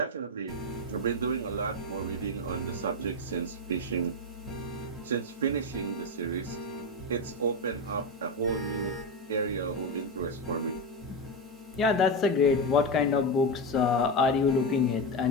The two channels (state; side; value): normal; both; correlation 0.13